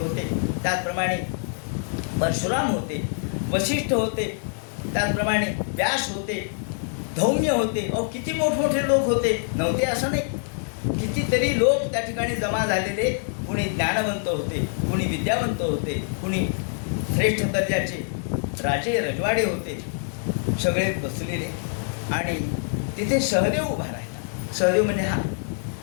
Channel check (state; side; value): silent; right; 61 dB below the other